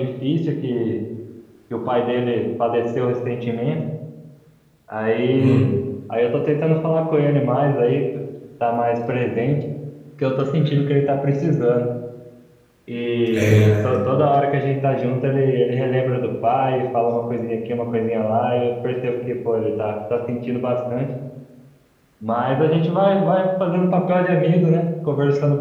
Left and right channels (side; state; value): both; identical; correlation 1.00